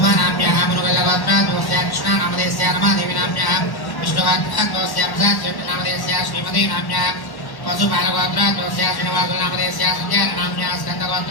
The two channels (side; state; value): right; late; 1.1 ms